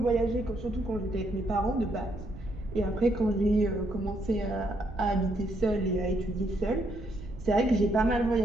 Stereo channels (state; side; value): noise; right; rumble, 14 dB below the sound